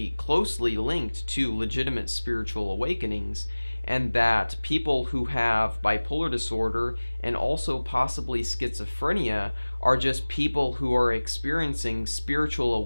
closely linked to legitimate spiritual awakenings, and that people who have bipolar disorder and also possibly schizophrenia are just people who are experiencing spiritual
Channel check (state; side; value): inverted; both; correlation -1.00